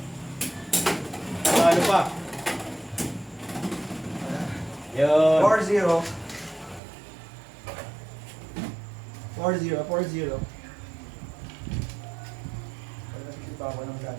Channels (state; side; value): drops out; left; at 6.8 s